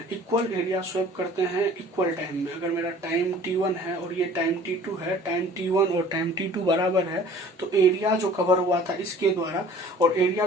इक्वल टाइम में, अगर मेरा टाइम T1 है और ये टाइम T2 है, टाइम T1 और टाइम T2 बराबर है, तो एरिया जो कवर हुआ था इसके द्वारा और एरिया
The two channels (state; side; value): normal; both; correlation 0.49